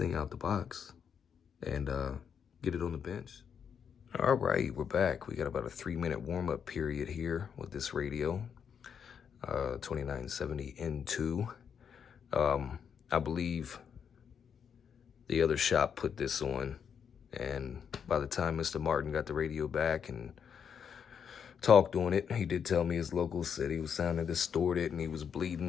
out the box and get it on the bench. All right, we're back. We got about a 3-minute warm-up period here with this radio, 2970N2. I believe the other shop put this on, and by the time Mr. Martin got the radio back and talked on it, he did tell me his local said he was sounding distorted and he was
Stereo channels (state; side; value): quieter; right; 7.4 dB